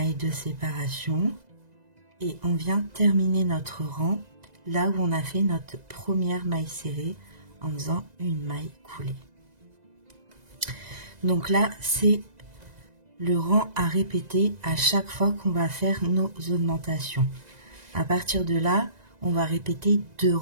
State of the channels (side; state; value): left; late; 2.0 ms